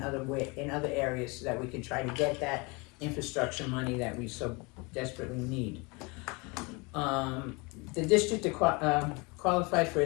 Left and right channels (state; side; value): quieter; right; 28.2 dB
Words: other areas so that we can try to get that infrastructure money that we so desperately need. The district qualified for a